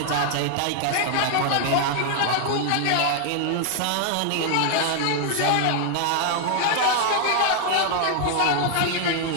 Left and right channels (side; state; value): both; different; correlation 0.00